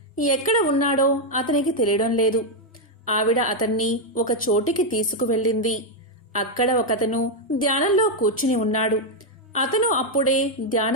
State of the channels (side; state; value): both; normal; correlation 0.01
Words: ఎక్కడ ఉన్నాడో అతనికి తెలియడం లేదు. ఆవిడ అతన్ని ఒక చోటికి తీసుకువెళ్ళింది. అక్కడ ఒకతను ధ్యానంలో కూర్చుని ఉన్నాడు. అతను అప్పుడే